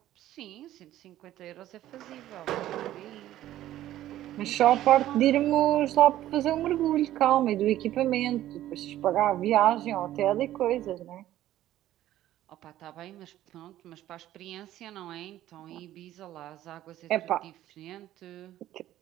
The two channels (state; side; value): quieter; left; 13.6 dB